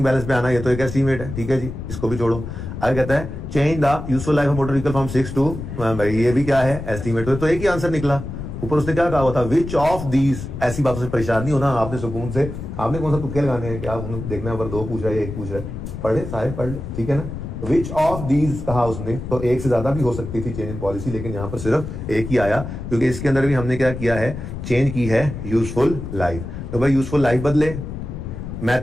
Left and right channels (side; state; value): left; noise; rumble, 8 dB below the sound